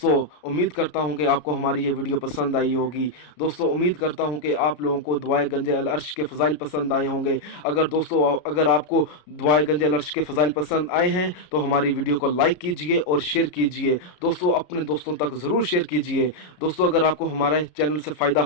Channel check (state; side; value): late; right; 33 ms